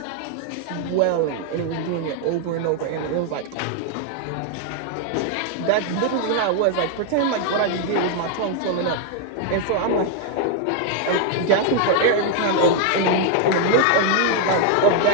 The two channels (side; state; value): both; different; correlation 0.00